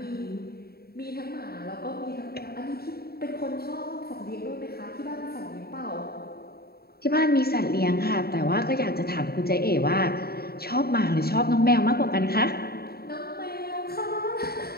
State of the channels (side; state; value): right; late; 0.45 ms